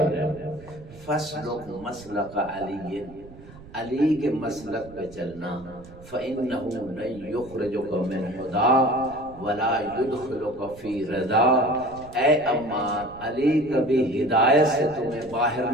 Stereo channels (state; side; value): noise; right; rumble, 19 dB below the sound